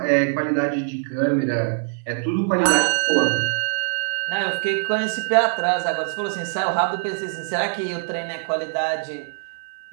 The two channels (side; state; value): left; silent; 57 dB below the other